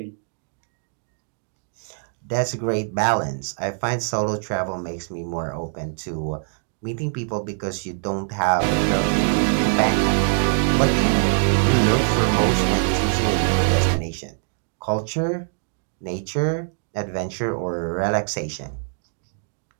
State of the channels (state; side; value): silent; left; digital silence